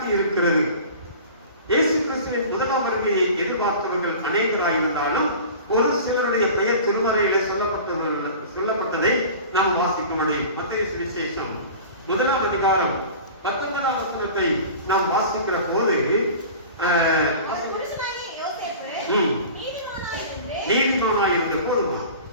இருக்கிறது. இயேசு கிறிஸ்துவின் முதலாம் வருகையை எதிர்பார்த்தவர்கள் அநேகராயிருந்தாலும் ஒரு சிலருடைய பெயர் திருமறையிலே சொல்லப்பட்டதை நாம் வாசிக்க முடியும். மத்தேயு சுவிசேஷம் 1ஆம் அதிகாரம் 19ஆம் வசனத்தை நாம் வாசிக்கிற போது நீதிமானாய் இருந்த போதுமா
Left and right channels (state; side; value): inverted; both; correlation -0.38